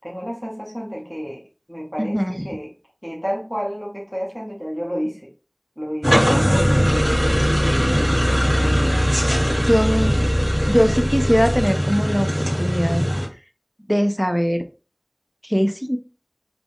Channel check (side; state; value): both; identical; correlation 1.00